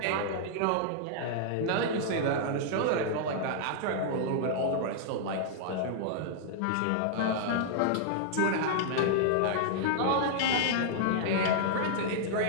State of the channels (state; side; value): different; both; correlation -0.01